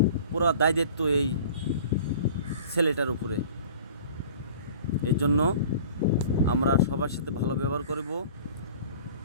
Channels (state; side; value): inverted; both; correlation -0.44